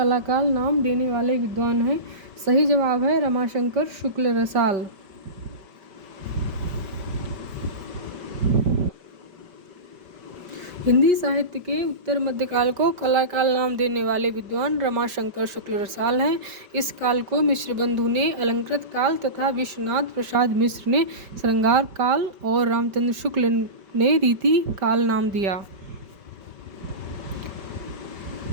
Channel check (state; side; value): late; left; 5.1 ms